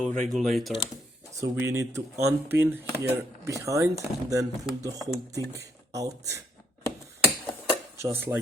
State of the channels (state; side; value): normal; both; correlation 0.71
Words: regulator. So we need to unpin here behind and then pull the whole thing out. Just